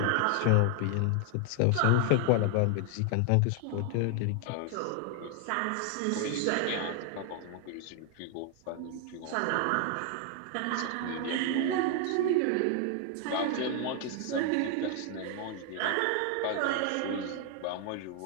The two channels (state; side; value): different; both; correlation 0.00